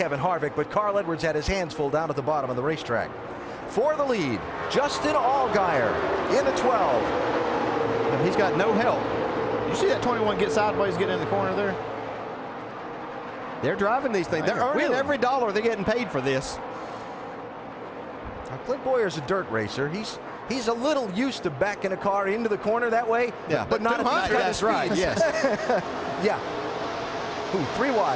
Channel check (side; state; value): both; identical; correlation 1.00